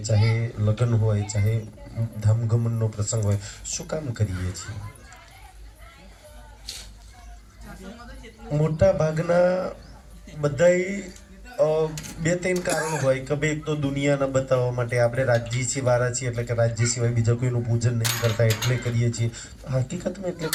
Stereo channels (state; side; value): identical; both; correlation 1.00